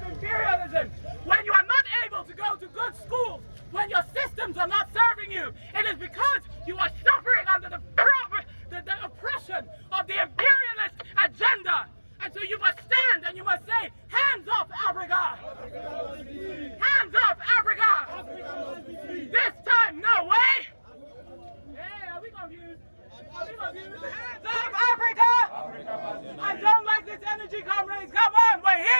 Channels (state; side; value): inverted; both; correlation -1.00